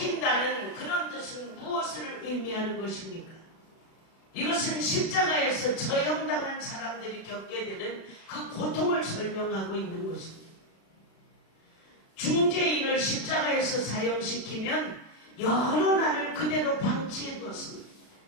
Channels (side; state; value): right; late; 36 ms